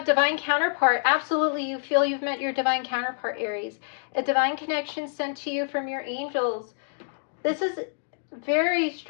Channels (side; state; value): right; silent; digital silence